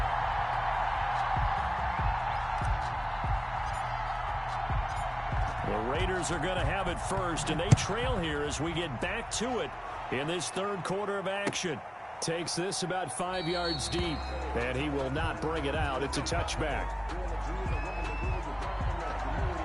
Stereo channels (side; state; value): both; identical; correlation 1.00